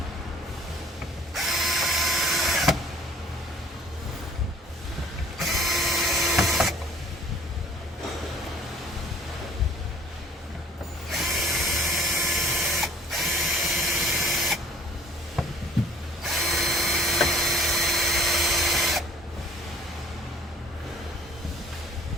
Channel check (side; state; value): both; normal; correlation 0.55